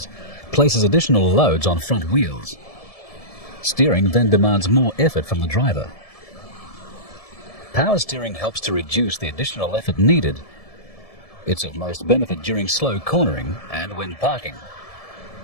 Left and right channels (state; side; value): late; right; 1.7 ms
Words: places additional loads on front wheels. Steering then demands more effort from the driver. Power steering helps to reduce the additional effort needed. It's of most benefit during slow cornering and when parking.